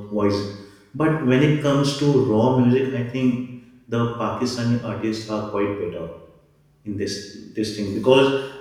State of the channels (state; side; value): identical; both; correlation 1.00